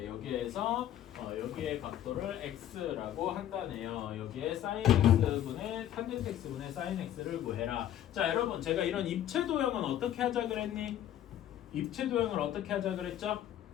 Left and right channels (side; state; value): right; quieter; 11.5 dB